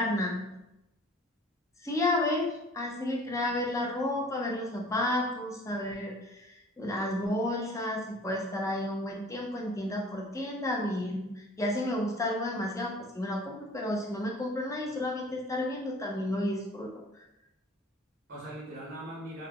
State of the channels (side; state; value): both; normal; correlation 0.48